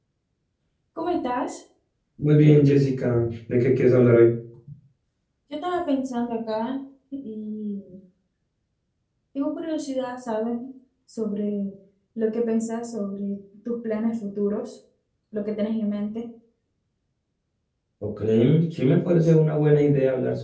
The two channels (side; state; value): both; identical; correlation 1.00